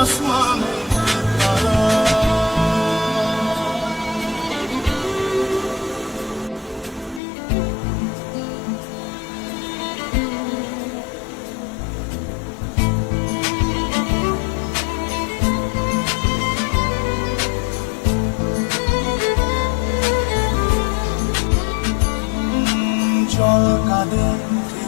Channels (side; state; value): right; drops out; at 7.2 s